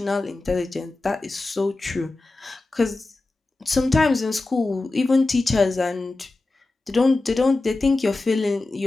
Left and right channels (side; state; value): right; quieter; 3.2 dB